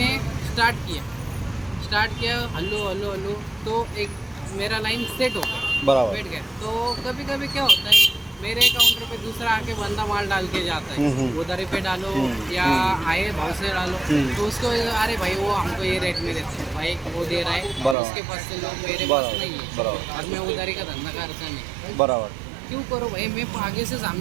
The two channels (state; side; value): drops out; left; at 17.9 s